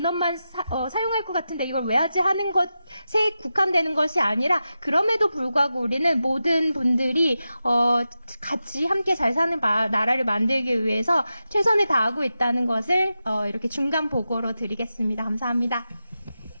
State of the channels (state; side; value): inverted; both; correlation -0.91